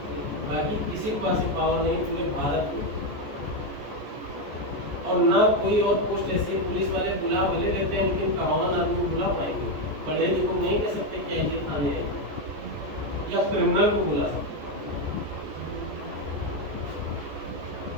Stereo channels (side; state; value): left; late; 14 ms